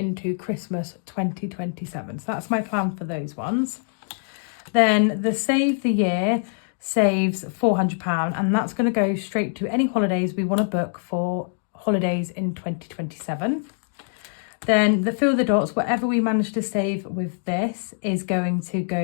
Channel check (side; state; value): right; silent; digital silence